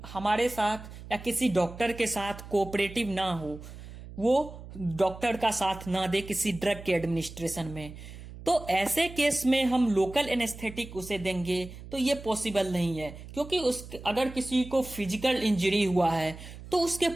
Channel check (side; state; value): right; noise; hum, 14 dB below the sound